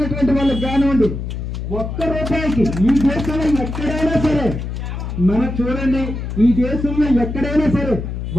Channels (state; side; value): noise; left; hum, 5 dB below the sound